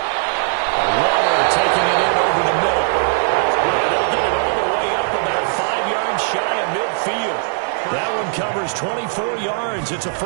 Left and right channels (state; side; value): silent; left; 61 dB below the other